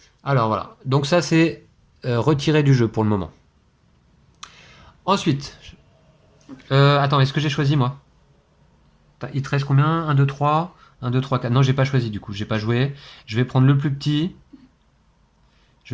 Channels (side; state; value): both; identical; correlation 1.00